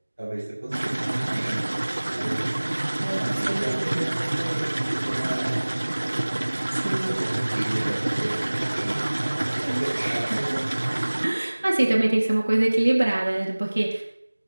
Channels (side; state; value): both; inverted; correlation -1.00